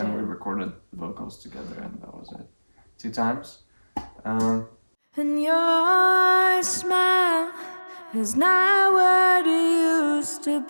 we recorded the vocals together and that was it. 2 times. And your smile is not what it used to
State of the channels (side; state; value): both; inverted; correlation -1.00